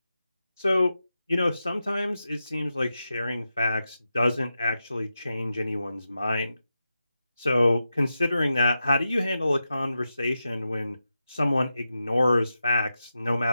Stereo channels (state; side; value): inverted; both; correlation -0.90